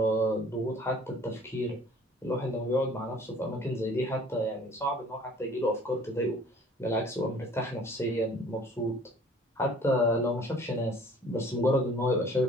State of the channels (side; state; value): both; normal; correlation 0.52